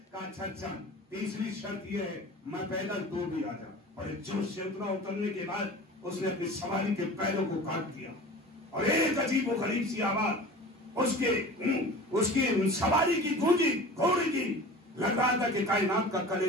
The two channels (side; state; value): both; normal; correlation 0.38